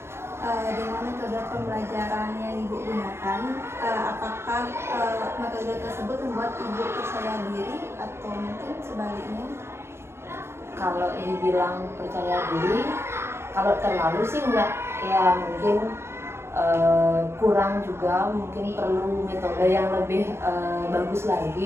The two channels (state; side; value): late; left; 0.12 ms